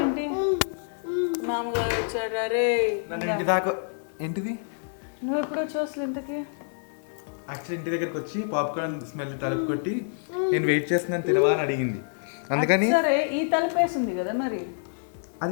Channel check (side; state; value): right; silent; 58 dB below the other